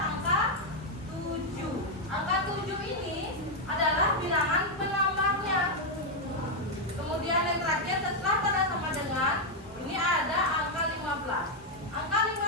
angka 7. Angka 7 ini adalah bilangan penambahnya. Kemudian yang terakhir setelah tanda sama dengan ini ada angka 15. Angka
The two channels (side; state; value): both; normal; correlation 0.01